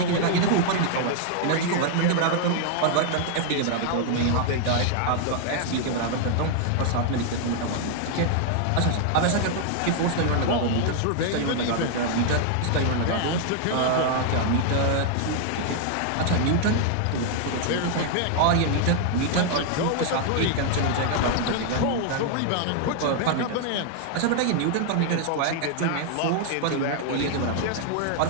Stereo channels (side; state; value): both; different; correlation 0.00